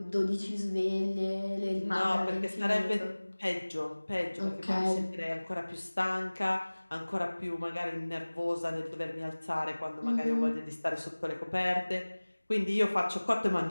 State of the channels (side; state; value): both; inverted; correlation -1.00